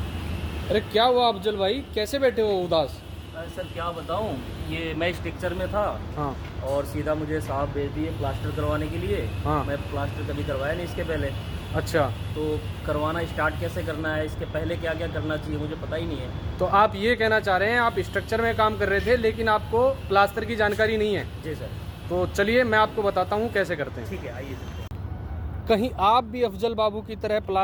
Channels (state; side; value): identical; both; correlation 1.00